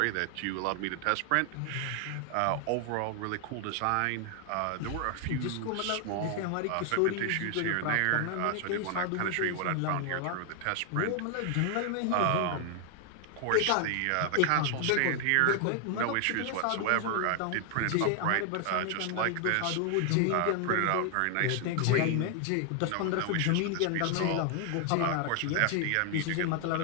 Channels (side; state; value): both; different; correlation 0.00